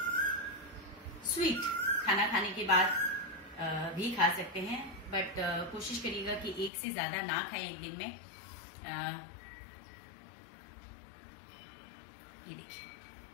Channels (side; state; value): right; drops out; at 6.7 s